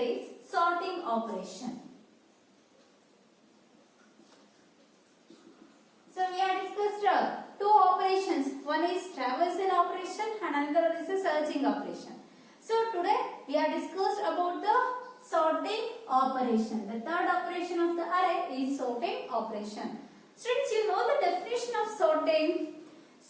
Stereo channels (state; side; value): identical; both; correlation 1.00